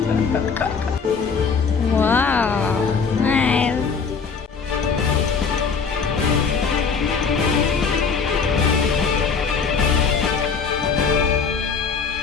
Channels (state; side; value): quieter; right; 5.6 dB